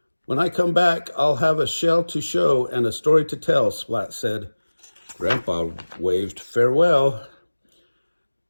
"When I come back, I'll have a shell to show and a story to tell," Splat said. Grandpa waved farewell.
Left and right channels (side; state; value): both; inverted; correlation -1.00